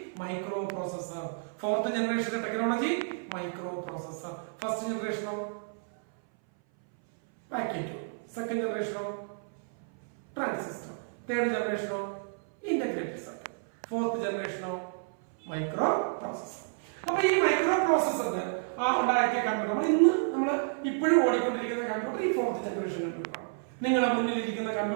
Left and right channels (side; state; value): left; silent; 57 dB below the other